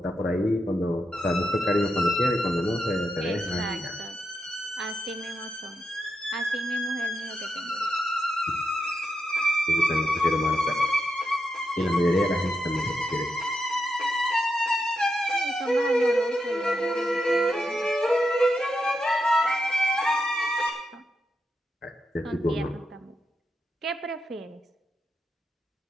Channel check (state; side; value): normal; both; correlation 0.85